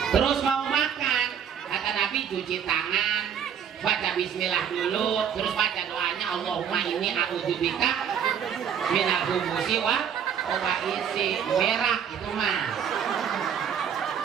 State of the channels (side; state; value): left; quieter; 8.2 dB